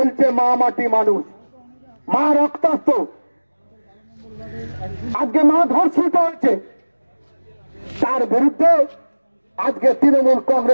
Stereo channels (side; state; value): both; inverted; correlation -1.00